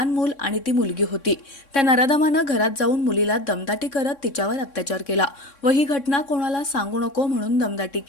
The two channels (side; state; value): right; late; 3.6 ms